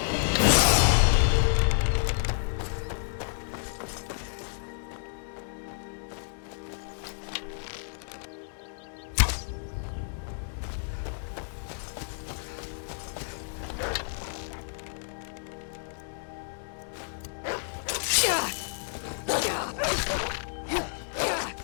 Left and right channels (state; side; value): silent; right; digital silence